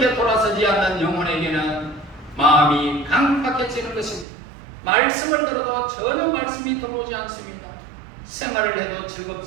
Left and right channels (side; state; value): left; drops out; at 4.2 s